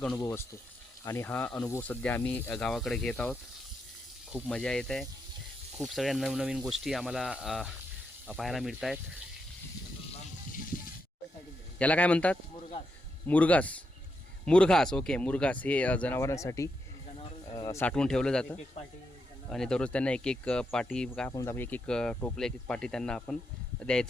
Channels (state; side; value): normal; both; correlation 0.83